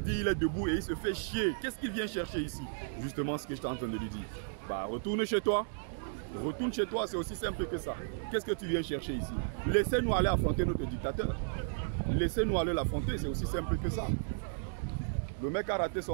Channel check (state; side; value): silent; left; digital silence